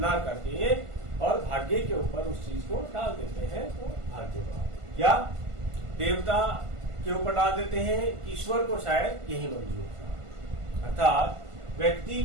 करके और भाग्य के ऊपर उस चीज को डाल देते हैं, तो भाग्यवाद। या देवता के ऊपर डाल देते हैं, ईश्वर को शायद यही मंजूर था। अर्थात व्यक्ति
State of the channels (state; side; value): late; left; 1.5 ms